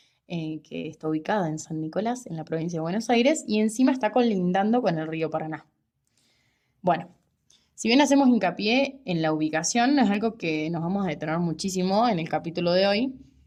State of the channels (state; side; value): identical; both; correlation 1.00